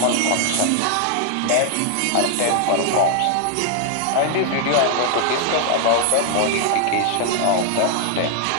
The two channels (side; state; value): both; different; correlation 0.00